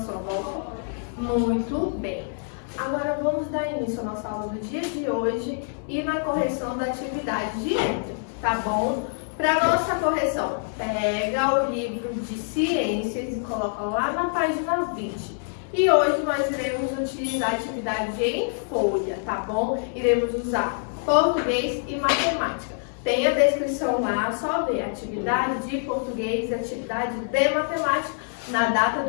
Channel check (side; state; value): right; silent; digital silence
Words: volta? Muito bem! Agora vamos dar início à nossa aula do dia de hoje e na correção da atividade de ontem, tá bom? Para nossa correção, pega o livro de ciências e coloca lá na página 20. E hoje nós iremos utilizar a atividade em folha, tá bom? Iremos usar português e matemática. Tem a descrição lá, só ver atividade de português e atividade de matemática na